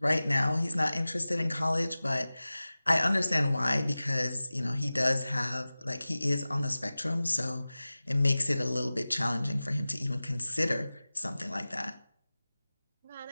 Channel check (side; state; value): both; inverted; correlation -0.97